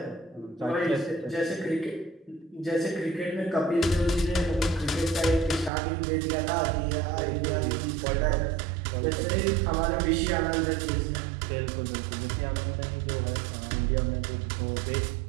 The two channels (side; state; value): left; drops out; at 5.7 s